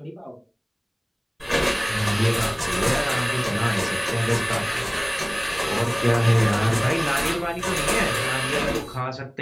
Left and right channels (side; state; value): both; identical; correlation 1.00